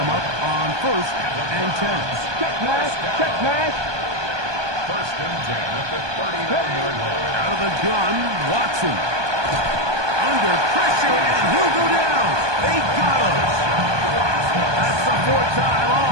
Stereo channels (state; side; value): late; left; 1.2 ms